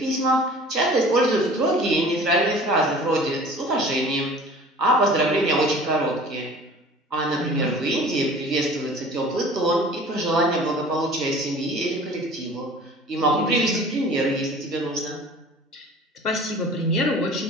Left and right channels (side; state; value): both; normal; correlation 0.45